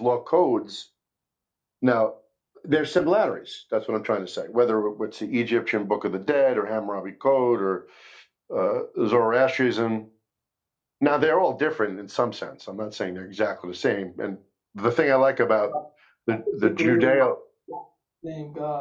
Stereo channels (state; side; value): identical; both; correlation 1.00